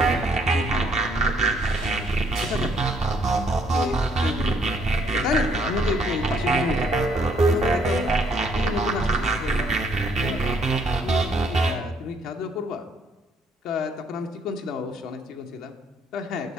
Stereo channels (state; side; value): normal; both; correlation 0.67